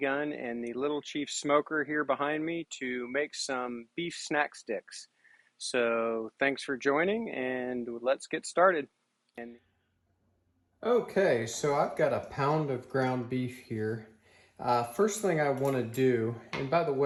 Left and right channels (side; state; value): both; identical; correlation 1.00